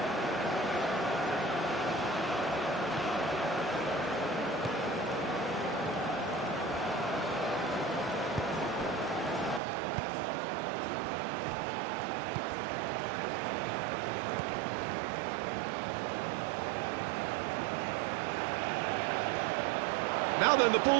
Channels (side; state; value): left; drops out; at 9.6 s